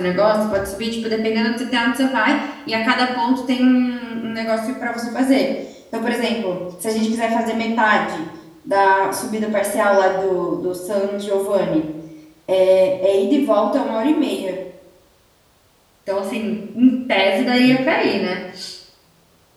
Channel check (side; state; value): both; identical; correlation 1.00